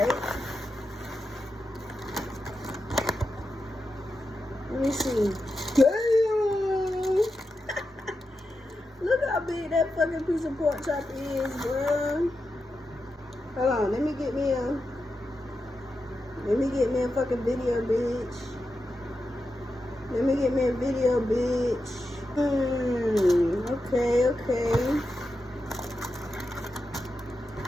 Let me see. Damn! Look how big that fucking piece of pork chop is, bro. Hold on, let me get me a fucking video, bitch. Let me get me a video, bitch. Okay.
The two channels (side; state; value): both; normal; correlation 0.89